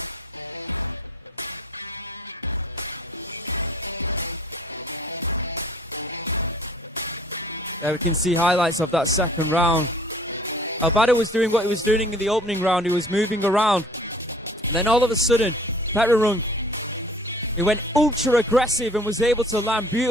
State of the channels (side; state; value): both; normal; correlation 0.52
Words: We can see highlights of that second round. Albada was doing what he was doing in the opening round. He was moving around. Then all of a sudden, Pet Rung Rung, he went ultra aggressive and was able to land